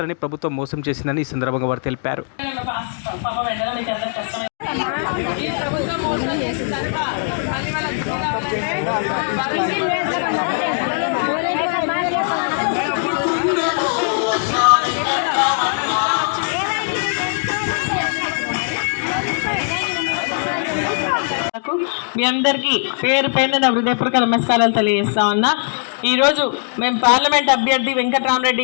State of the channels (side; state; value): right; silent; 66 dB below the other